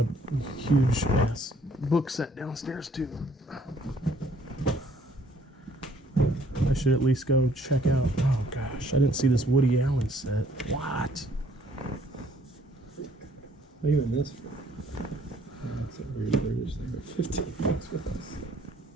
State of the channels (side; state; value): both; normal; correlation 0.62